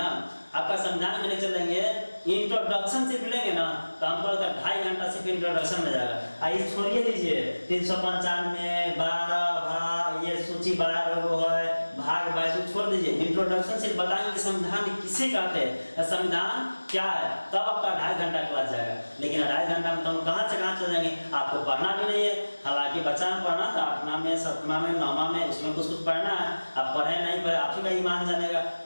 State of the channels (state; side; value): inverted; both; correlation -1.00